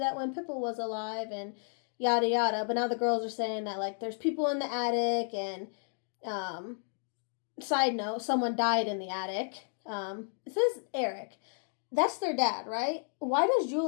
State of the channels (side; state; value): right; silent; 56 dB below the other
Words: when Pippa was alive, and yada yada. But now the girls are saying that, like, there's people in the attic, and side note, someone died in the attic. It says Eric. That's their dad, right? Why does